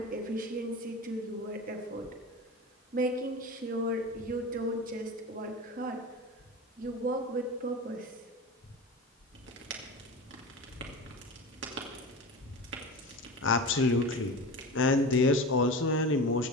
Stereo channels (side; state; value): both; normal; correlation 0.30